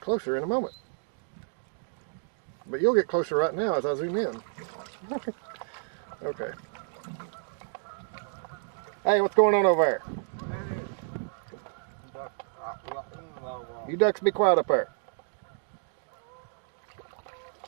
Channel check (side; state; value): left; silent; digital silence